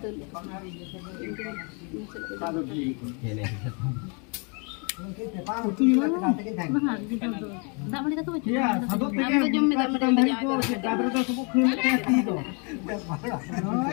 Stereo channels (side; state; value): right; quieter; 35.1 dB